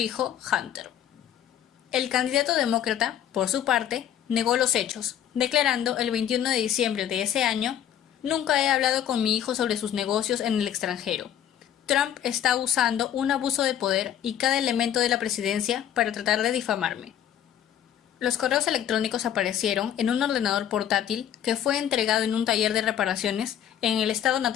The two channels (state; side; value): quieter; right; 10.2 dB